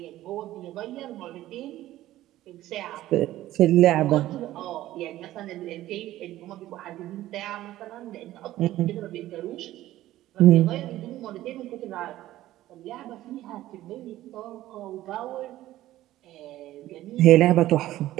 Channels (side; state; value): left; quieter; 14.8 dB